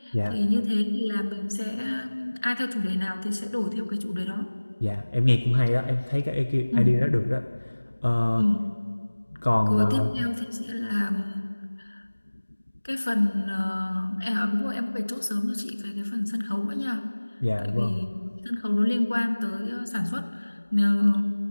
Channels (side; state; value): both; inverted; correlation -1.00